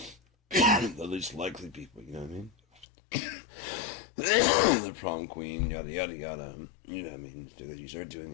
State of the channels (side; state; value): right; drops out; at 2.9 s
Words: least likely people, you know what I mean? The prom queen, yada yada yada. You know what I mean? Because you start doing